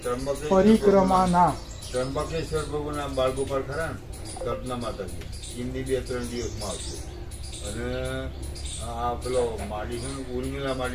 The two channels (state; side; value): identical; both; correlation 1.00